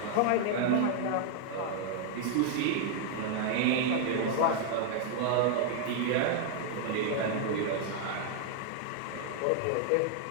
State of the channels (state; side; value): different; both; correlation 0.00